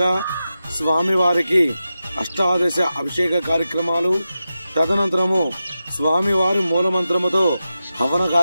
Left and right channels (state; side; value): inverted; both; correlation -0.91